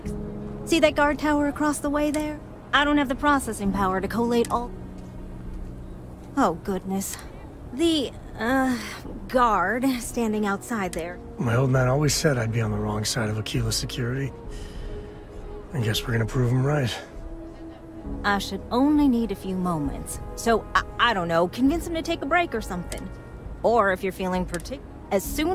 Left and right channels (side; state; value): both; identical; correlation 1.00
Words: See that guard tower across the way there? I don't have the processing power to collate all... Oh, goodness. The... guard standing outside there. My old man always said I'd be on the wrong side of Aquila security. I guess we're gonna prove him right. I should only need a few moments. So, I don't know, convince him to take a break or something. Or if you're feeling as